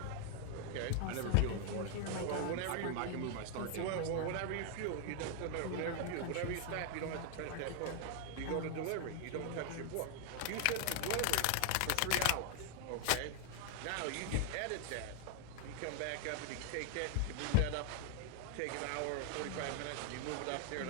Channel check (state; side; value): different; both; correlation 0.00